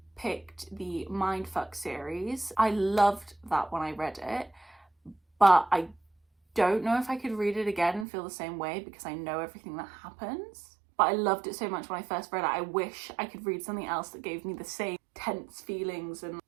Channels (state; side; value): drops out; left; at 8.1 s